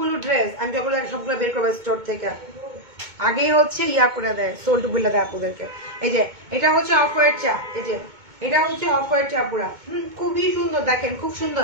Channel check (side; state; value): left; late; 2.2 ms